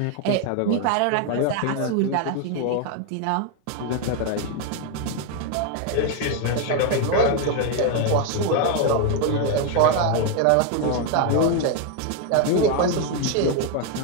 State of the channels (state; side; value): different; both; correlation 0.01